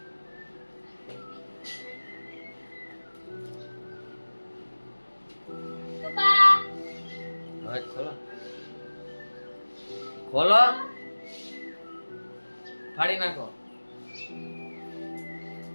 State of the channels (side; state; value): both; inverted; correlation -1.00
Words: ખોલો ખોલો ફાડી નાખો